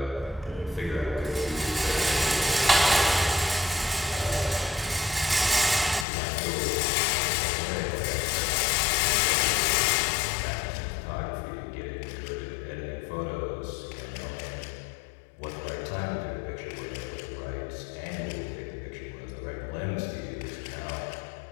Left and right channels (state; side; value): drops out; right; at 6.1 s